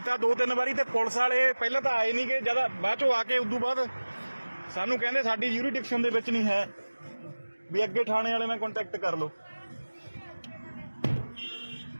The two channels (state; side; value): inverted; both; correlation -1.00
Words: 2-3 ਵਾਰੀ ਤੇ ਪੁਲਿਸ ਵਾਲੇ ਪਹਿਲਾਂ ਤਾਂ ਆਏ ਨਹੀਂਗੇ, ਜਦ ਬਾਅਦ ਚੋਂ ਆ ਕੇ ਉਦੋਂ ਬਾਅਦ ਸਾਨੂੰ ਕਹਿੰਦੇ ਸਾਡੀ ਯੂਰੀਡਿਕਸ਼ਨ ਦੇ ਵਿੱਚ ਨਹੀਂ ਹੈ ਵੀ ਅੱਗੇ ਥਾਣੇ ਵਾਲੇ ਨਾਲ ਕੰਟੈਕਟ ਕਰ ਲਓ।